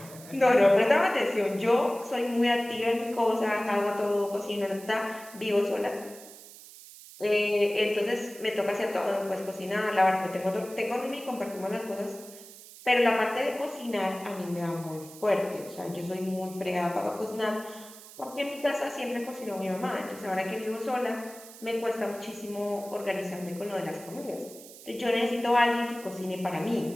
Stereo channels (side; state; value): right; noise; hiss, 18 dB below the sound